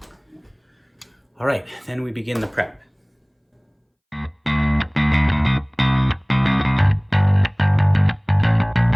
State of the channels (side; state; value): both; identical; correlation 1.00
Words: All right, then we begin the prep.